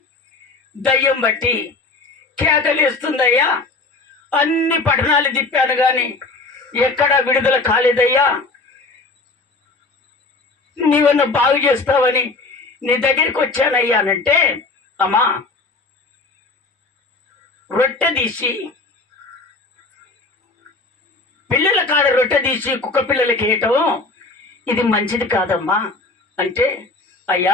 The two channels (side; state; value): right; quieter; 3.5 dB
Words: దయ్యం బట్టి కేకలేస్తుందయ్యా, అన్ని పట్టణాలు తిప్పాను కానీ ఎక్కడా విడుదల కాలేదయ్యా, నీవన్న బాగు చేస్తావని నీ దగ్గరికి వచ్చానయ్యా అనంటే, అమ్మా రొట్టె తీసి పిల్లల కాడ రొట్టె తీసి కుక్క పిల్లలకి వేయటం ఇది మంచిది కాదమ్మా అంటే,